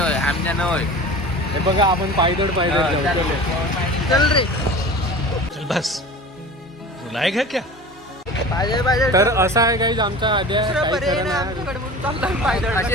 होय, आमच्या न होय. हे बघा, आपण पायदळ जाऊ. चल रे. चल बस. रुलाएगा क्या? पाहिजे तर असं आहे काही आमचा आद्या काही पर्याय खरं नाही नाही. आमच्याकडे म्हणून चालला पायदळ. असे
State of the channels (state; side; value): normal; both; correlation 0.37